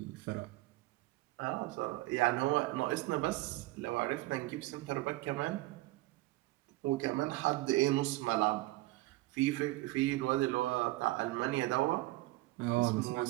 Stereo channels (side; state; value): left; quieter; 19.4 dB